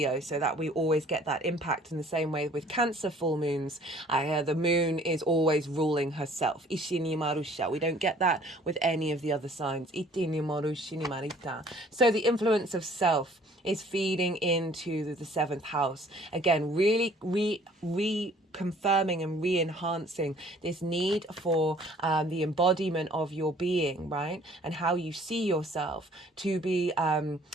so that we always get that impact. In the same way with Cancer full moons, the moon is always ruling herself. We don't get that with any of the other signs. So the influence of self is feeding into the 7th house. Again, really confirming and re-enhancing this need for the embodiment of your being, right? And how you see yourself to be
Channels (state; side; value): normal; both; correlation 0.55